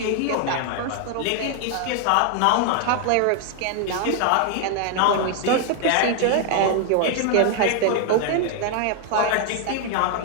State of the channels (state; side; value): different; both; correlation 0.00